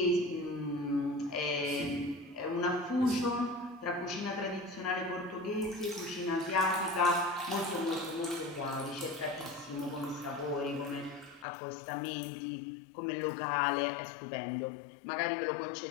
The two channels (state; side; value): drops out; right; at 11.5 s